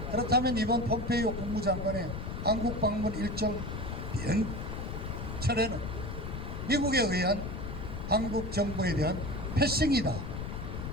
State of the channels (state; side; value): noise; left; rumble, 6 dB below the sound